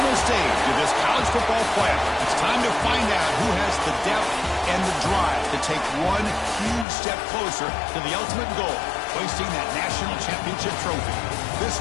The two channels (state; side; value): drops out; right; at 6.9 s